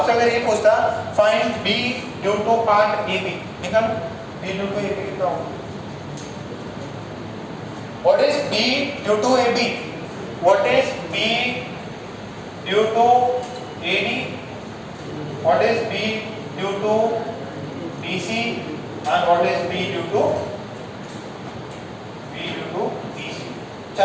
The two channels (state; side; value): identical; both; correlation 1.00